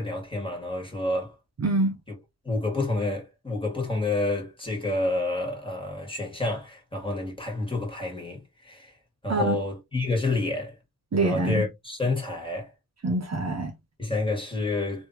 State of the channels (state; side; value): normal; both; correlation 0.49